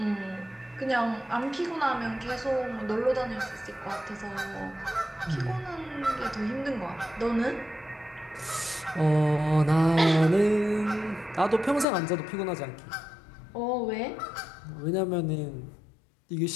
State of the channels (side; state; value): right; drops out; at 11.9 s